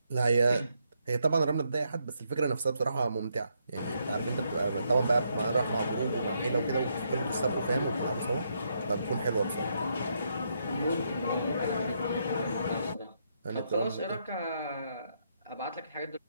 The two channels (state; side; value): inverted; both; correlation -0.77